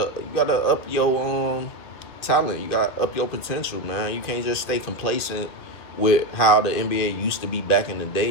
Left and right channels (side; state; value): right; late; 2.6 ms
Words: your talent, you gotta up your potential, man. You can't just stay complacent with how the NBA used to be back in the